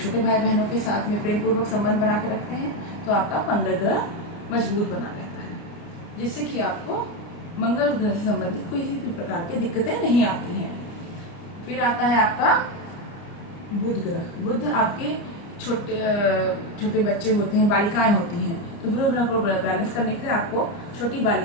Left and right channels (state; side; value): late; right; 29 ms